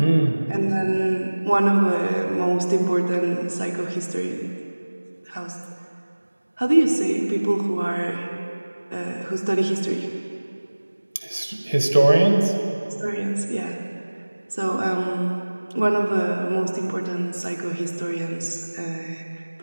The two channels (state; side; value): inverted; both; correlation -1.00